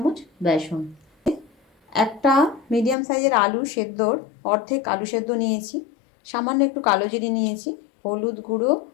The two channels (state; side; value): drops out; right; at 3.0 s